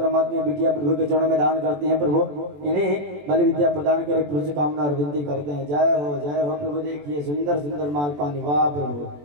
बिटिया प्रभु के चरणों में दान करते हैं, प्रभु इन्हें बलि विद्या प्रदान करे, प्रभु से कामना और विनती करते हैं। जय हो प्रभु। देखिए सुंदर सुंदर माल पानी, वाह प्रभु।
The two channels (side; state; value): left; late; 21 ms